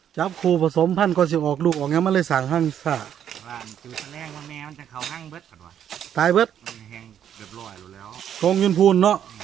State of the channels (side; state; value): left; quieter; 9.5 dB